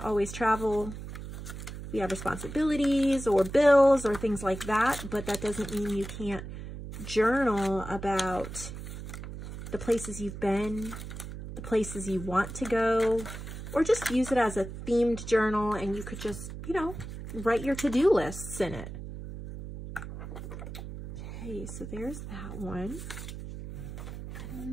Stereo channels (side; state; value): right; noise; hum, 9 dB below the sound